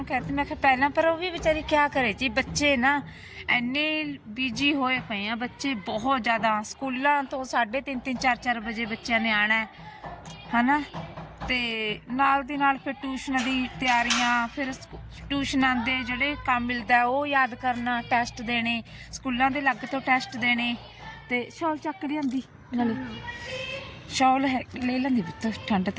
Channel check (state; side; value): identical; both; correlation 1.00